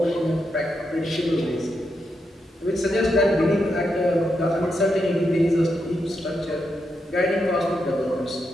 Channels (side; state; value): both; normal; correlation 0.83